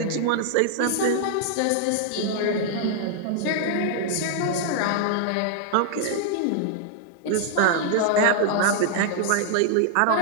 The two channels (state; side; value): different; both; correlation 0.00